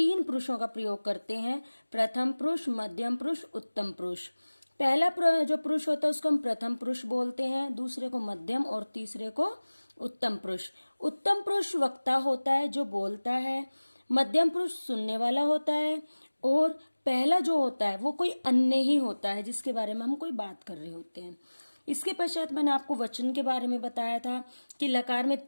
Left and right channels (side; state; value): both; inverted; correlation -1.00